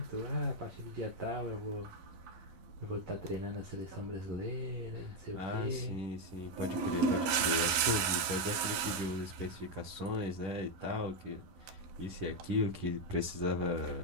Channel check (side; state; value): left; late; 12 ms